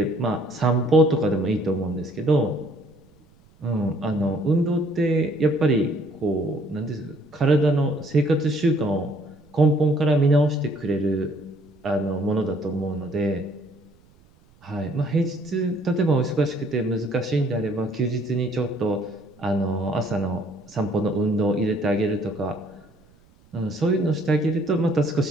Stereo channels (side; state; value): right; noise; rumble, 30 dB below the sound